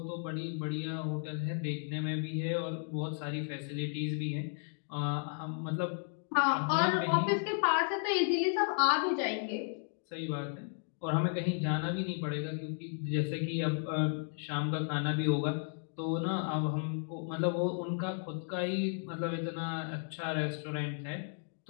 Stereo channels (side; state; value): right; silent; 55 dB below the other